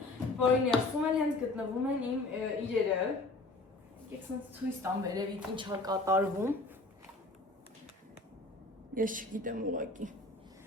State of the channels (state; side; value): quieter; right; 3.1 dB